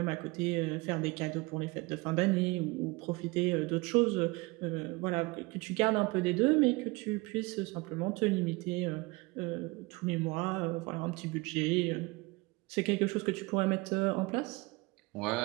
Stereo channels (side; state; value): left; quieter; 24.6 dB